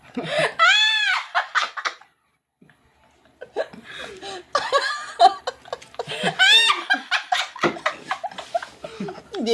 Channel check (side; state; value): both; identical; correlation 1.00